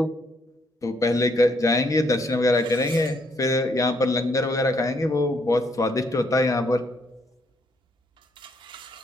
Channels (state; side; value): normal; both; correlation 0.71